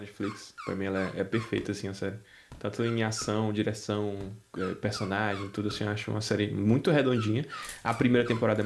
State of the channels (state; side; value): identical; both; correlation 1.00